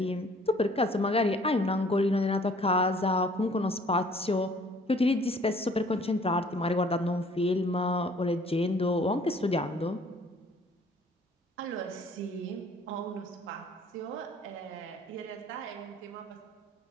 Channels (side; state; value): both; normal; correlation 0.56